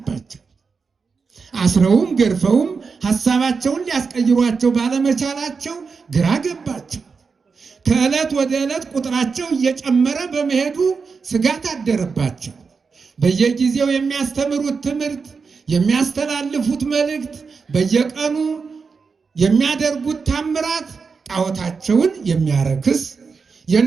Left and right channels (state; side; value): quieter; left; 5.1 dB